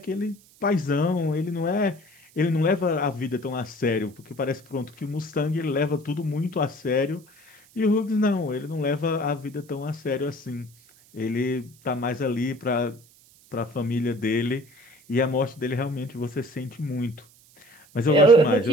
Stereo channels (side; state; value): right; noise; hiss, 27 dB below the sound